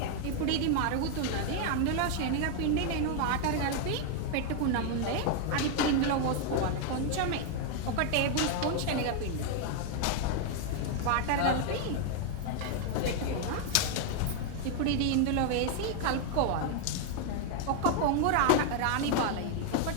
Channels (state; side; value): different; both; correlation 0.00